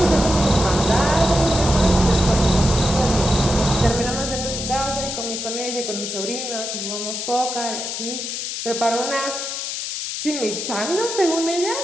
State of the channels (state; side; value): noise; left; hiss, 5 dB below the sound